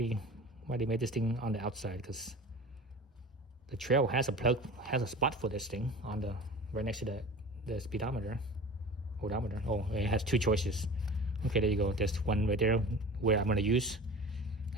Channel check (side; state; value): both; normal; correlation 0.38